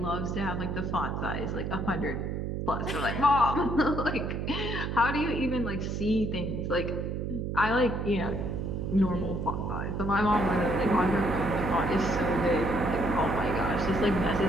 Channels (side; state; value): right; noise; hum, 3 dB below the sound